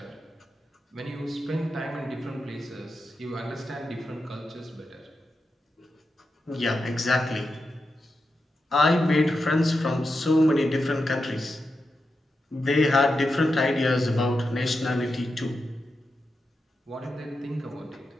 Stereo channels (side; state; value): both; normal; correlation 0.88